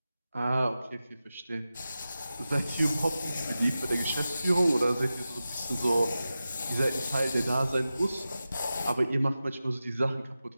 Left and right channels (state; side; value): inverted; both; correlation -0.93